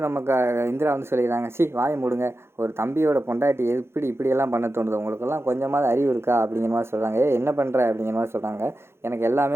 நமக்கு இந்திரா வந்து சொல்லிடுறாங்க, வாயை மூடுங்க, ஒரு தம்பியோட பொண்டாட்டி இப்படியெல்லாம் பண்ண தோணுது, உங்களுக்கெல்லாம் கொஞ்சமாவது அறிவு இருக்கா அப்படிங்கிற மாதிரி சொல்கிறாங்க. என்ன பண்ணுற அப்படிங்கிற மாதிரி சொல்கிறாங்க. எனக்கு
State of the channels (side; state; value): left; late; 0.12 ms